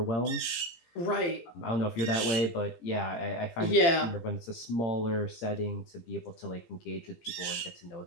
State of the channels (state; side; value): late; right; 17 ms